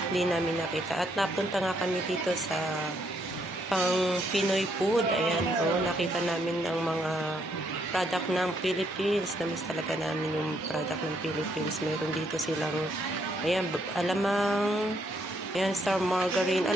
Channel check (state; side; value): normal; both; correlation 0.73